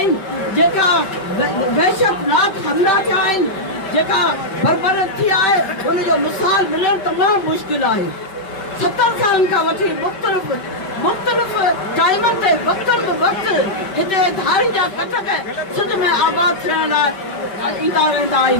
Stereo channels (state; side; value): late; right; 5.2 ms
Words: जेका वहशतनाक हमला थिया आहिनि, जेका बरबरत थी आहे उनजो मिसाल मिलणु तमामु मुश्किल आहे। 70 सालनि खां वठी मुख़्तलिफ़ टाइमनि ते वक़्तनि बि वक़्तु हिते धारियुनि जा कटक सिंध में आबाद थियण लाइ ईंदा रहंदा